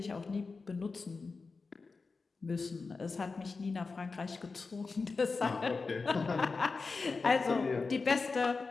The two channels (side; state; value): right; quieter; 4.3 dB